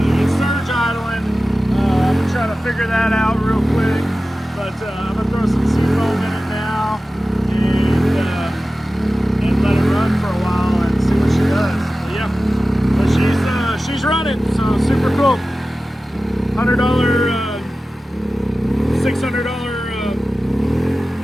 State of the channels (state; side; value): normal; both; correlation 0.95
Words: super cool. $100,